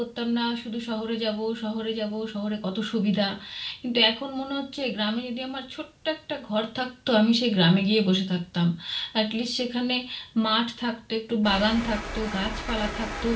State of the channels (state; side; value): identical; both; correlation 1.00